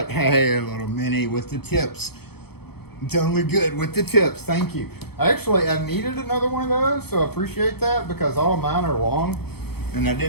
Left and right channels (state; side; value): late; right; 0.96 ms